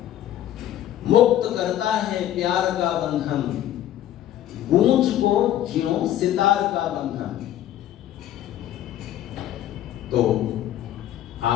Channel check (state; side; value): quieter; right; 12.2 dB